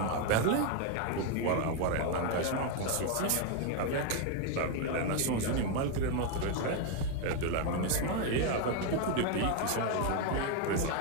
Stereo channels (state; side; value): different; both; correlation 0.01